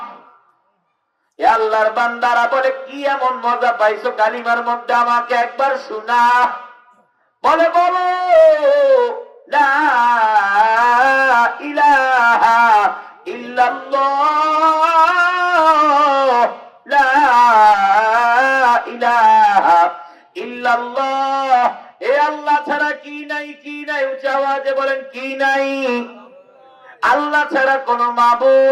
আল্লাহর বান্দারা বলে, কি এমন মজা পাইছো কালিমার মধ্যে, আমাকে একবার শোনা। বলে, বলো লা ইলাহা ইল্লাল্লাহ, লা ইলাহা ইল্লাল্লাহ। এ আল্লাহ ছাড়া কি নাই, কি নাই, উচ্চ আওয়াজে বলেন কি নাই। আল্লাহ ছাড়া কোন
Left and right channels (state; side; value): identical; both; correlation 1.00